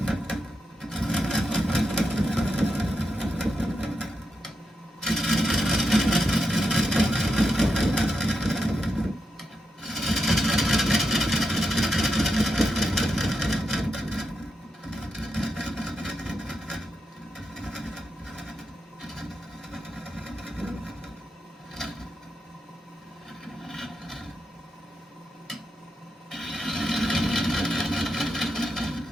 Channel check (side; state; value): both; normal; correlation 0.85